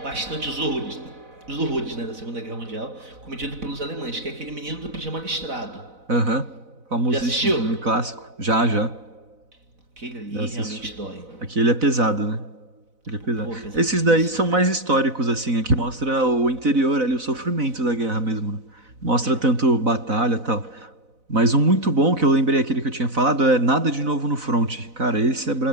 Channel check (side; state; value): left; late; 4.0 ms